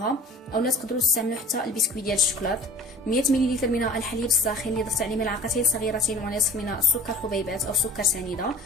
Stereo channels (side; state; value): both; normal; correlation 0.44